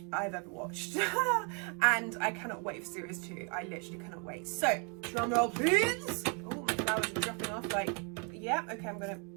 I've ever watched. And I cannot wait for series 2. I literally cannot wait. So, drum roll please. Oh, my flowers are dropping off. Like, yeah, okay, I'm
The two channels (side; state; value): left; quieter; 36.6 dB